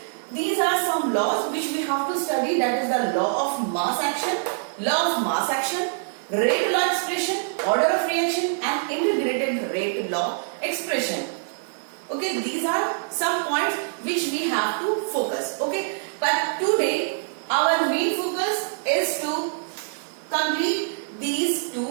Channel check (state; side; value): silent; left; digital silence